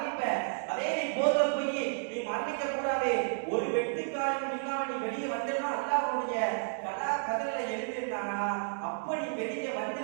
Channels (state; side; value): silent; left; digital silence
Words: அதே நீ போர்ல போய் நீ மரணிக்க கூடாது, ஒரு வெட்டுக்காலம் இல்லாம நீ வெளியே வந்தா அல்லாஹ் உன்னுடைய கதலை எழுதிட்டானா அப்ப நீ வெளியே